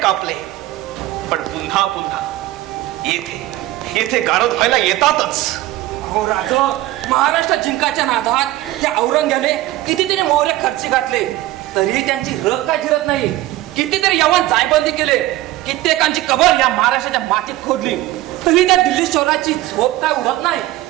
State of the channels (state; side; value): quieter; left; 16.3 dB